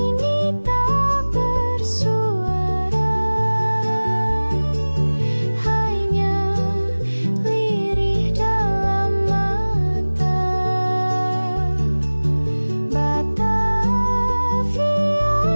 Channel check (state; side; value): inverted; both; correlation -1.00